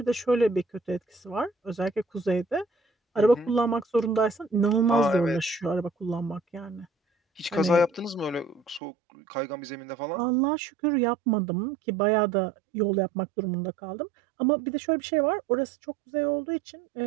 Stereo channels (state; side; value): drops out; left; at 8.8 s